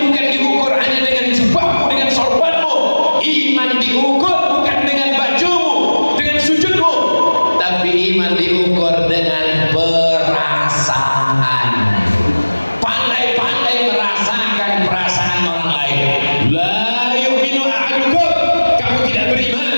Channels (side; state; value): both; inverted; correlation -1.00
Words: bukan diukur hanya dengan jubahmu, dengan sorbanmu. Iman diukur bukan dengan bajumu, dengan sujudmu, tapi iman diukur dengan perasaan. Pandai-pandai merasakan perasaan orang lain. La yu'minu ahadukum, kamu tidak beriman